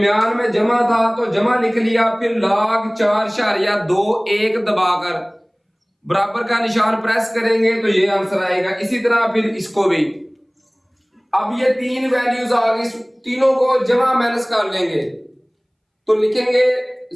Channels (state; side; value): identical; both; correlation 1.00